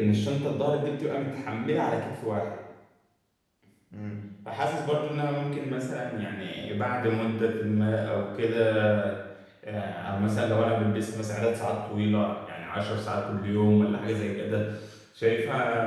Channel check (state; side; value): identical; both; correlation 1.00